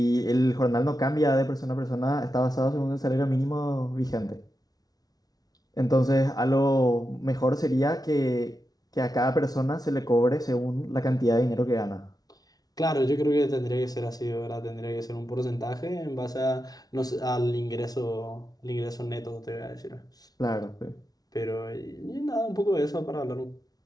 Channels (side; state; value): right; late; 0.19 ms